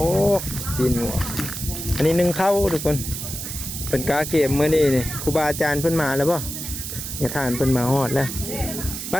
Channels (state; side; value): noise; right; hiss, 7 dB below the sound